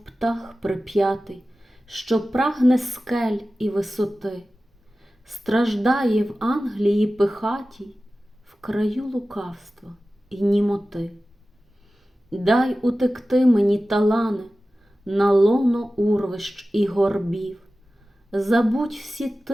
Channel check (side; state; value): both; normal; correlation 0.96